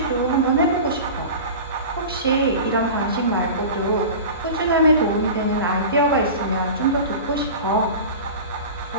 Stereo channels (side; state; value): both; inverted; correlation -0.33